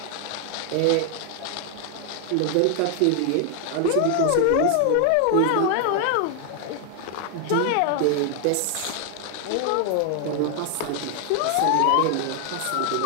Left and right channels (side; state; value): both; different; correlation 0.00